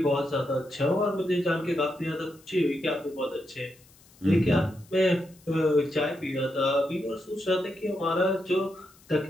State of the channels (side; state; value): left; noise; hiss, 27 dB below the sound